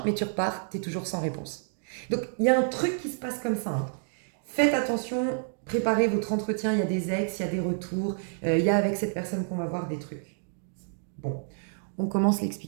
mais tu repars, tu es toujours sans réponse. Donc, il y a un truc qui se passe comme ça. Hein. Faites attention, préparez votre entretien, il y a des ex, il y a des retours, il y a avec cette personne qu'on va voir des trucs. Bon, on commence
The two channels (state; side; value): silent; left; digital silence